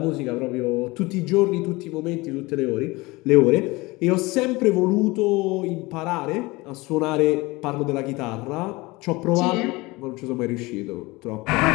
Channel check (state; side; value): quieter; right; 22.5 dB